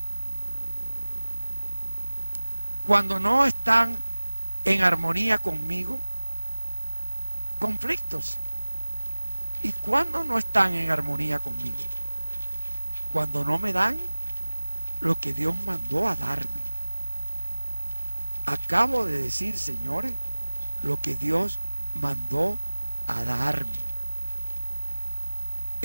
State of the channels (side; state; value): both; inverted; correlation -1.00